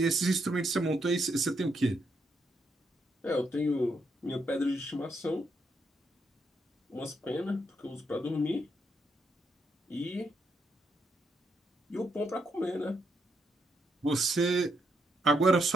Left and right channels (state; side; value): normal; both; correlation 0.78